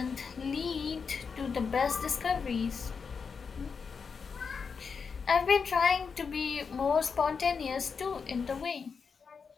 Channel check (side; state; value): right; quieter; 5.6 dB